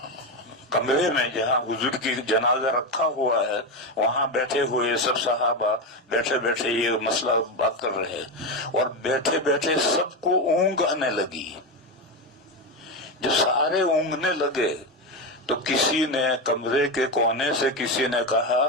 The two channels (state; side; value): normal; both; correlation 0.14